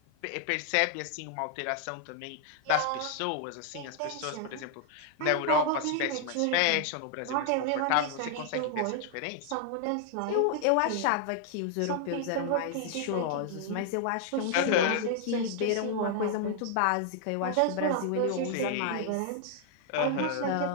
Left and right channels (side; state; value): both; different; correlation 0.00